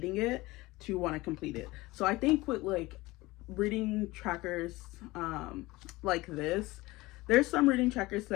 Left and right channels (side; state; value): right; quieter; 20.4 dB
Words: it to want to complete it. So I think with like reading trackers like this, there's some reading trackers